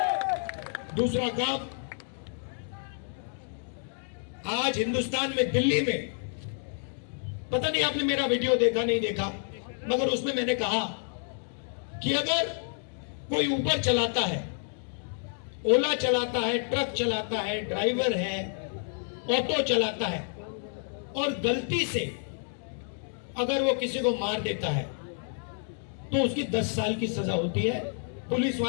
दूसरा काम, आज हिंदुस्तान में दिल्ली में, पता नहीं आपने मेरा वीडियो देखा नहीं देखा, मगर उसमें मैंने कहा कि अगर कोई ऊबर चलाता है, ओला चलाता है, ट्रक चलाता है, ड्राइवर है, ऑटो चलाता है और गलती से अगर वो किसी को मार देता है तो उसकी 10 साल की सजा होती है। पुलिस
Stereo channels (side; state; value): right; silent; 58 dB below the other